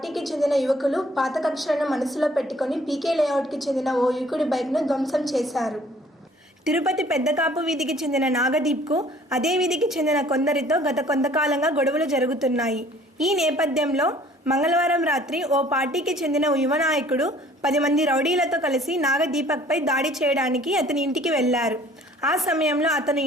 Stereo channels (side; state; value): both; normal; correlation 0.54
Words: చెందిన యువకులు పాత కక్షలను మనసులో పెట్టుకుని పీకే లేఅవుట్కి చెందిన ఓ యువకుడి బైక్ను ధ్వంసం చేశారు. తిరుపతి పెద్దకాపు వీధికి చెందిన నాగదీప్కు అదే వీధికి చెందిన కొందరితో గత కొంతకాలంగా గొడవలు జరుగుతున్నాయి. ఈ నేపథ్యంలో మంగళవారం రాత్రి ఓ పార్టీకి చెందిన యువ నాయకుడు 10 మంది రౌడీలతో కలిసి నాగదీపక్పై దాడి చేయడానికి అతని ఇంటికి వెళ్లారు. ఆ సమయంలో అతను